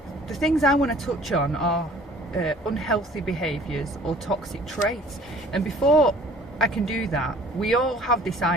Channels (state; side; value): normal; both; correlation 0.52